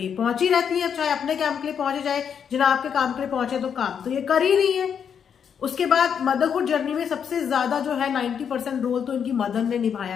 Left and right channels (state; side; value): quieter; right; 7.6 dB